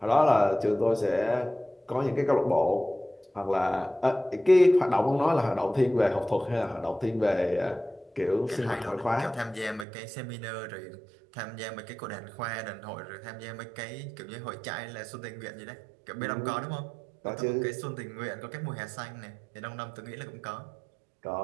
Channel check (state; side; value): drops out; left; at 9.9 s